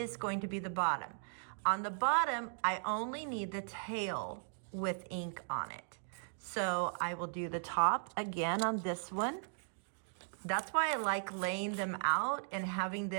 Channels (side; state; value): left; silent; digital silence